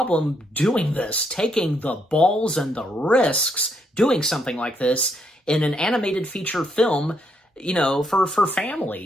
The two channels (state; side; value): normal; both; correlation 0.75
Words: doing this, taking the balls and the risks, doing something like this in an animated feature film, for